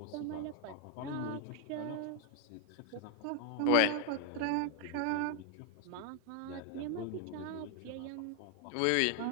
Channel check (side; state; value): both; different; correlation 0.00